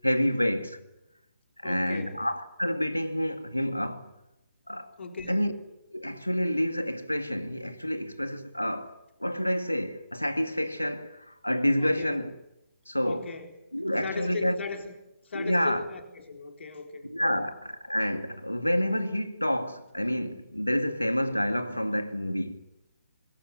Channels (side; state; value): both; inverted; correlation -0.96